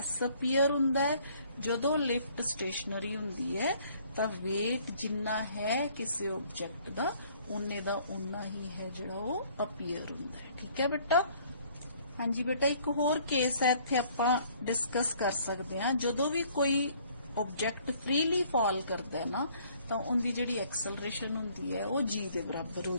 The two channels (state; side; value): inverted; both; correlation -0.59